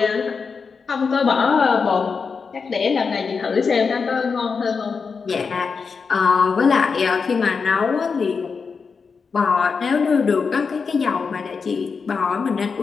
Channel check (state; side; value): quieter; right; 5.3 dB